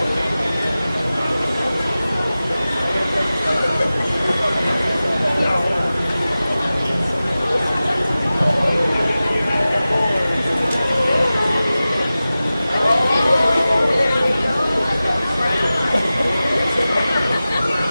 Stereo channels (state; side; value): inverted; both; correlation -0.96